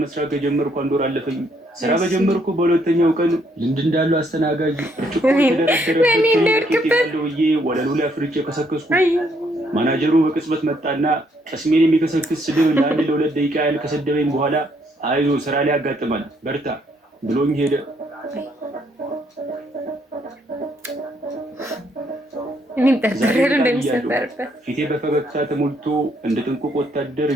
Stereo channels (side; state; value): both; normal; correlation 0.70